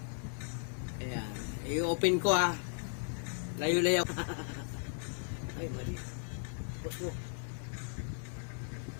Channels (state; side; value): silent; right; 54 dB below the other